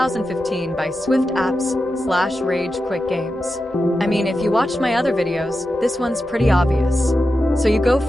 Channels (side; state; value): both; normal; correlation 0.90